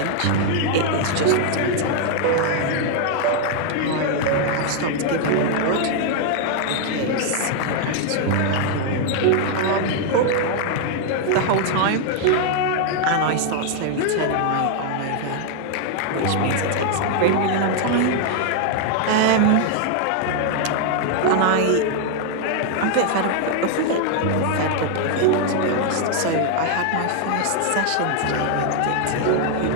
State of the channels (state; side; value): different; both; correlation 0.00